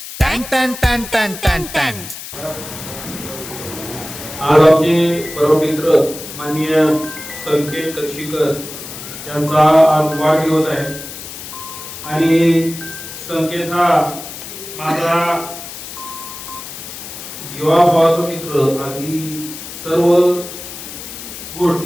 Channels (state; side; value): noise; left; hiss, 11 dB below the sound